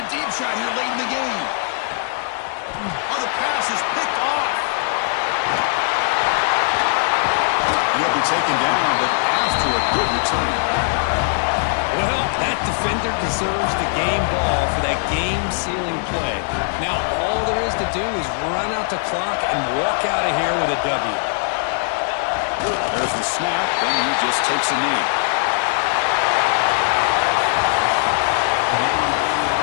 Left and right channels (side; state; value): right; silent; digital silence